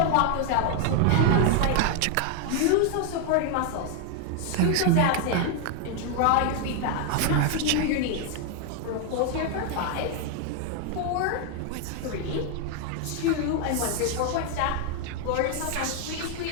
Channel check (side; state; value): both; different; correlation 0.00